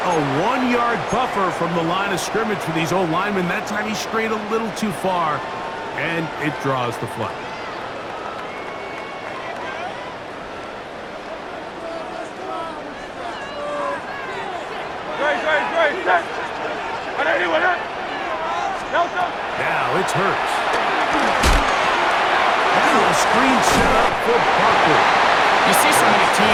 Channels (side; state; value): both; identical; correlation 1.00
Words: a 1-yard buffer from the line of scrimmage for these old linemen. That time he strayed a little too far, and it draws the flag. Now it's Hurts. And a screen set up for Barkley. You see so many